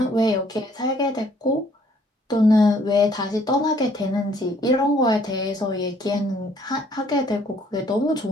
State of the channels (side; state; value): both; normal; correlation 0.62